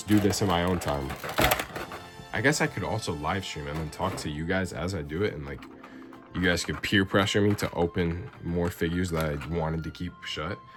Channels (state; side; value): identical; both; correlation 1.00